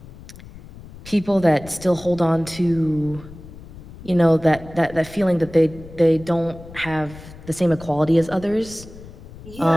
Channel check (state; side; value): noise; left; rumble, 17 dB below the sound